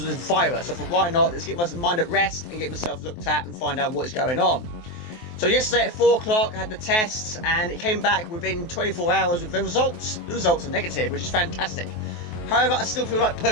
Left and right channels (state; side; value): late; right; 23 ms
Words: of this virus, so I thought, why not? Let's get my mind at rest and get myself looked at and find out what's going on. So yesterday at 4 o'clock I had the test and it came back within 24 hours with the results. The results are negative, which is fantastic. However, I still feel like